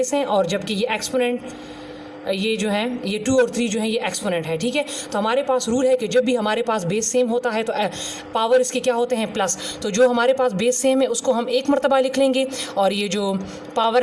हैं, और जबकि ये एक्सपोनेंट ये जो है ये 2 और 3 जो है ये एक्सपोनेंट है। ठीक है, तो हमारे पास रूल है कि जब भी हमारे पास बेस सेम होता है तो पावर इसके क्या होते हैं, प्लस। तो जो हमारे पास बेस सेम है उसको हम एक मरतबा लिख लेंगे, और ये जो पावर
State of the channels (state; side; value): identical; both; correlation 1.00